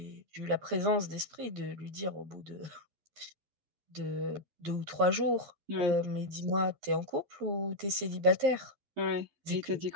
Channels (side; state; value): left; late; 12 ms